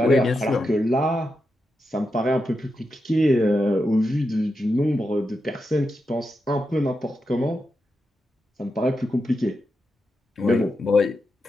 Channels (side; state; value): both; normal; correlation 0.87